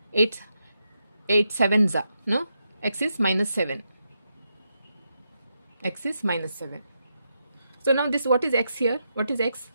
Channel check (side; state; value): both; inverted; correlation -0.84